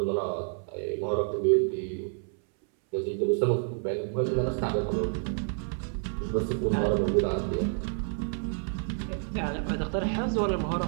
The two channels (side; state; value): left; silent; 59 dB below the other